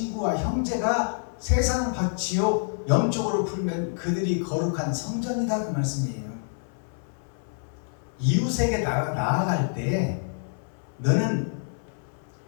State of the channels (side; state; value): right; silent; 60 dB below the other